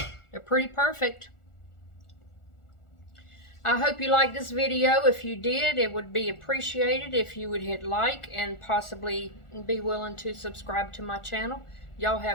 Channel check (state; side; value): late; right; 1.4 ms